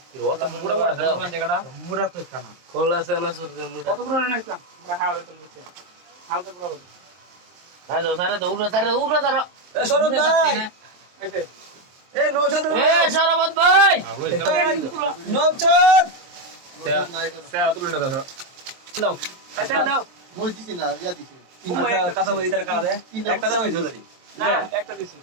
দিব ওটা মুড়া মুড়া দাও জায়গাটা মুরা তো কানা খোলা সেনা সুরতে মুড়া কত করে নাইছিলাম মুড়া হাওড়ে তো নিচে হালকা করে বল হাজো সারা তো উড়া তারা এ সরব ভাই এসে এ নৌশাদ এ সরবত ভাই নৌশাদ তেরা তুলে না দাও দাও আচ্ছা দাও মই দিছি না ইয়া দিছি আচ্ছা কথা বলি তার কানা দে একটা দাও হইছো দাদি না একটা দিছি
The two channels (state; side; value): late; left; 23 ms